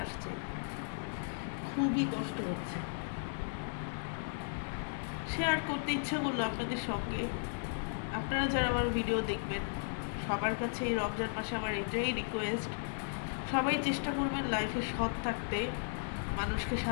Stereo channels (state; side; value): silent; right; digital silence